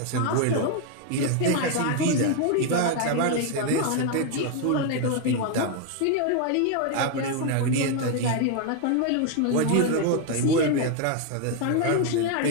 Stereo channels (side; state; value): both; different; correlation 0.01